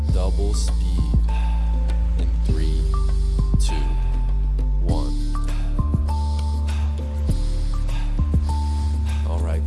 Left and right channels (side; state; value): both; identical; correlation 1.00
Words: double speed in 3, 2, 1. Alright,